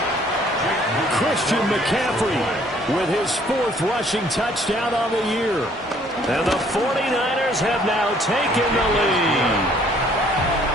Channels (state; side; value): normal; both; correlation 0.60